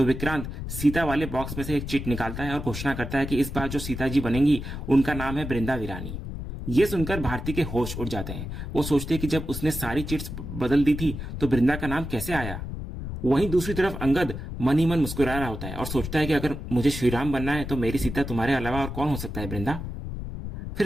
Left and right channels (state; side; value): noise; left; rumble, 7 dB below the sound